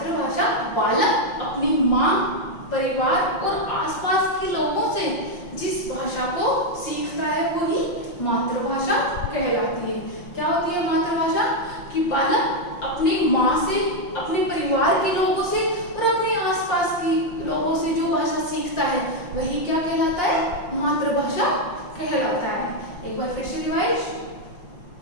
बालक अपनी माँ, परिवार और आसपास के लोगों से जिस भाषा को सीखता है वही मातृभाषा कहलाती है। क्या होती है मातृभाषा? कि बालक अपनी माँ से, अपने परिवार के लोगों से और अपने आसपास के लोगों से जो भाषा सीखता है वही क्या कहलाता है? मातृभाषा कहलाता है। एक बार फिर से रिवाइज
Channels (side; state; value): right; late; 5.7 ms